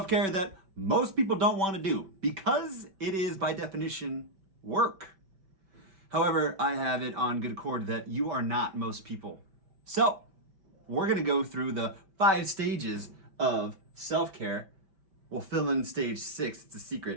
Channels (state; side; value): late; left; 5.1 ms